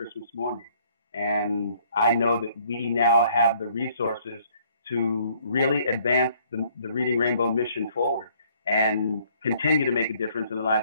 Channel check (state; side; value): inverted; both; correlation -0.62